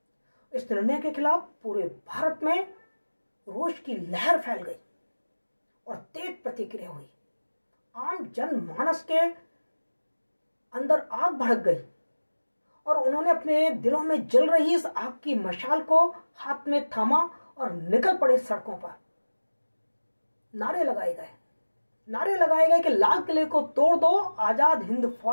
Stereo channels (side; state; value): both; inverted; correlation -1.00